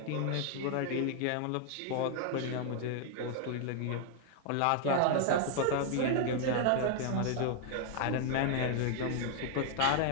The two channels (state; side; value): different; both; correlation 0.00